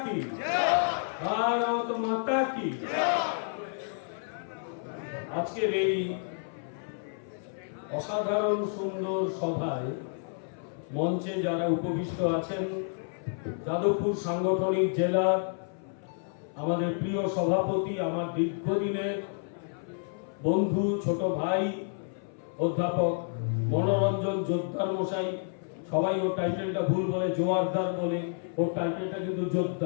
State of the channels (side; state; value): right; silent; 58 dB below the other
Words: কি, ভারত মাতা কি। আজকের এই অসাধারণ সুন্দর সভায় মঞ্চে যারা উপবিষ্ট আছেন, যাদবপুর সাংগঠনিক জেলার আমাদের প্রিয় সভাপতি, আমার দীর্ঘদিনের বন্ধু, ছোট ভাই অধ্যাপক মনোরঞ্জন জোদ্দার মশাই, সবাই ওর টাইটেলটা ভুল বলে, জোয়ারদার বলে, ওর টাইটেলটা কিন্তু